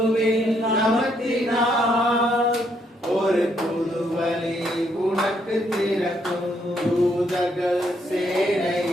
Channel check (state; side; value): normal; both; correlation 0.73